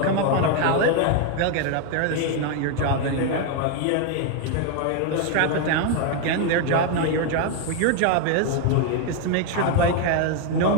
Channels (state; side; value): different; both; correlation 0.01